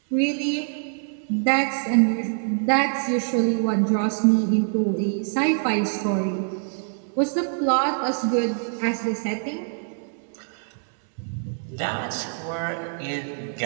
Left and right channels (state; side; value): silent; left; digital silence